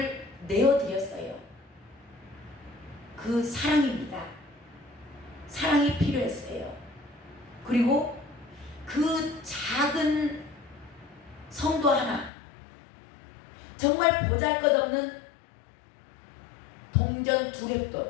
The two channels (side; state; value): right; drops out; at 12.3 s